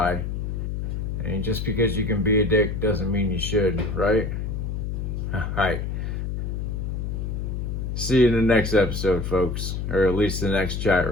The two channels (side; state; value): left; noise; hum, 3 dB below the sound